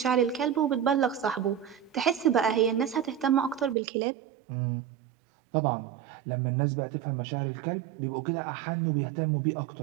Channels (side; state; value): left; drops out; at 3.8 s